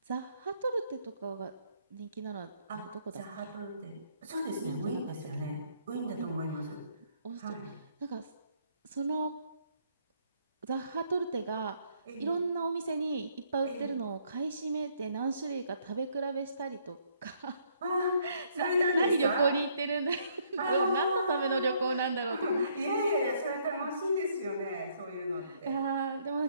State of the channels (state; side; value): inverted; both; correlation -0.68